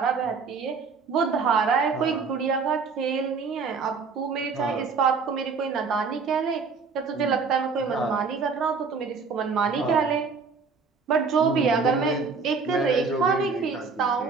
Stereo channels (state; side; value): quieter; left; 5.0 dB